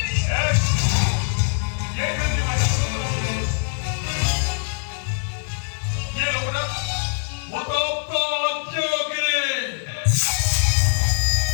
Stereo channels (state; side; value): silent; right; digital silence